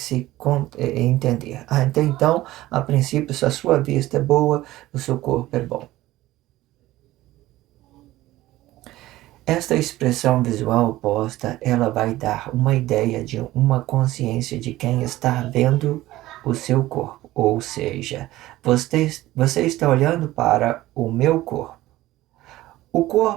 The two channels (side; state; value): left; quieter; 16.5 dB